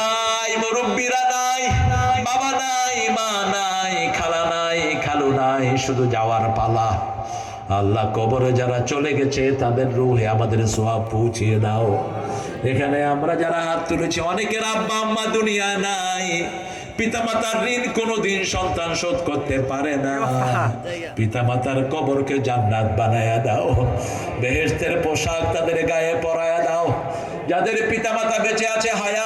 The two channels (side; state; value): both; identical; correlation 1.00